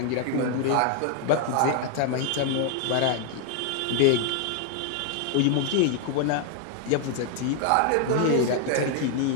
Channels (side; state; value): both; different; correlation 0.00